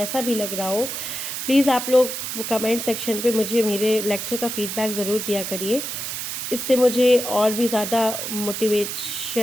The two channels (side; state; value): right; noise; hiss, 5 dB below the sound